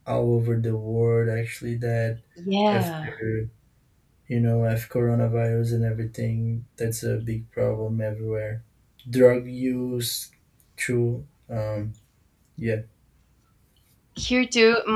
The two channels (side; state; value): both; identical; correlation 1.00